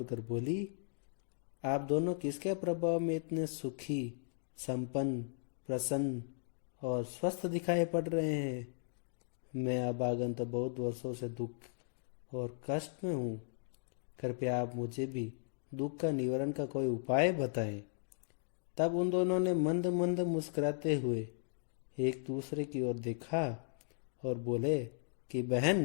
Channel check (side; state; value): right; silent; digital silence